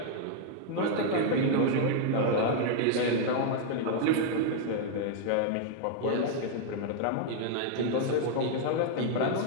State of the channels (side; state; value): both; different; correlation 0.00